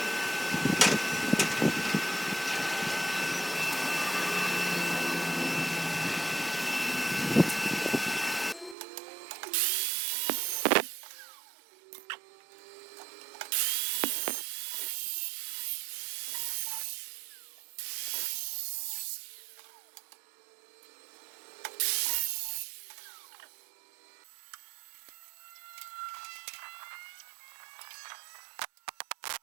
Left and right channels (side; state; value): left; drops out; at 8.8 s